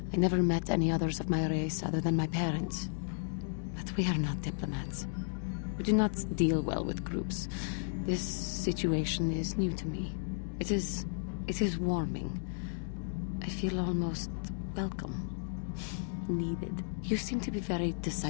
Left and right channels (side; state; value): right; silent; digital silence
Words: I never met any others of my race other than my parents. But we are not diplomats. We do not deal well with groups. This situation is new to me. It is warming. I feel almost welcome. Needed. You seem to be very